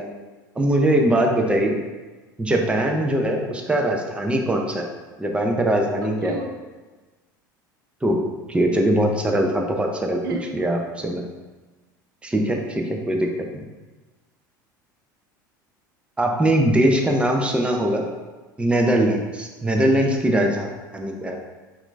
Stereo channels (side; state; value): both; normal; correlation 0.66